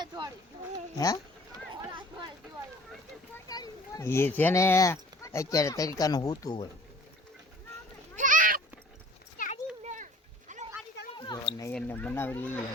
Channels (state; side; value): normal; both; correlation 0.50